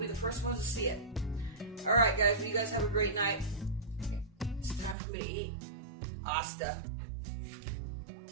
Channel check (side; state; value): left; drops out; at 5.0 s